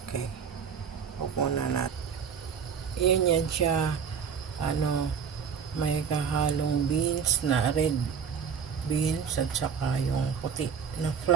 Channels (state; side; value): quieter; left; 7.0 dB